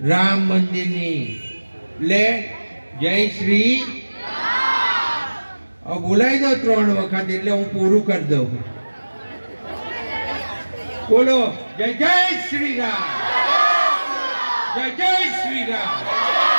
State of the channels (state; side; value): inverted; both; correlation -1.00